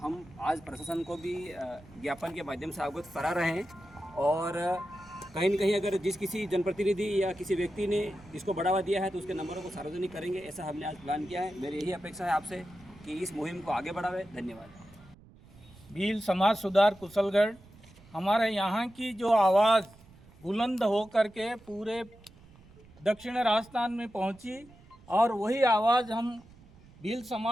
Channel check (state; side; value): noise; right; rumble, 24 dB below the sound